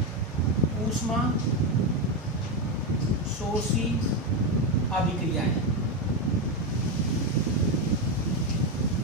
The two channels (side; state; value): both; normal; correlation 0.10